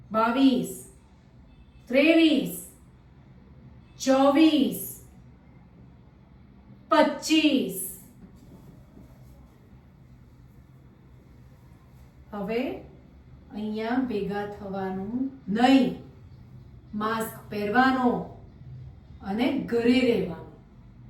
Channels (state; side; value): identical; both; correlation 1.00